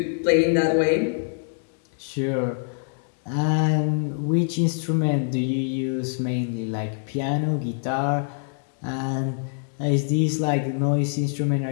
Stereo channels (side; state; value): right; silent; digital silence